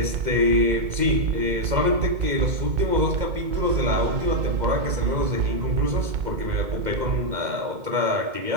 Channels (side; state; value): left; late; 2.0 ms